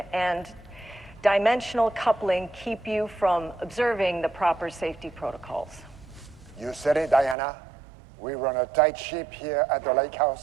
and dimensional coupling keep you from observing the proper safety protocols. You said it, Diana. We run a tight ship here at the Lake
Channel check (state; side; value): drops out; left; at 7.4 s